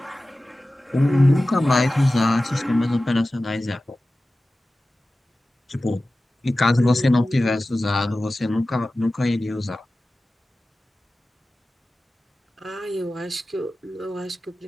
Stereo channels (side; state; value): both; normal; correlation 0.96